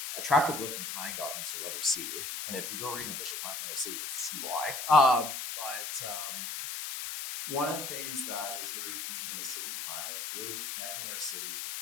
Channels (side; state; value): left; noise; hiss, 5 dB below the sound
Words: attractive looking planning documents you'll ever see. And if you go read an official plan from the city, you'll see why. But one of the things that is very deep in the city plan is really connecting our cities